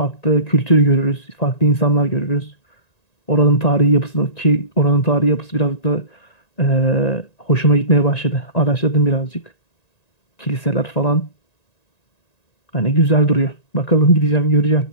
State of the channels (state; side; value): late; right; 1.9 ms